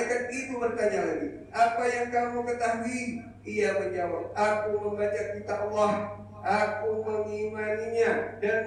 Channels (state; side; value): identical; both; correlation 1.00